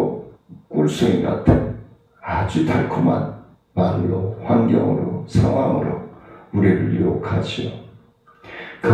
꿀송이 같은 아주 달콤한 말로, 환경으로, 상황으로 우리를 유혹하죠.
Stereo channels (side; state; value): both; identical; correlation 1.00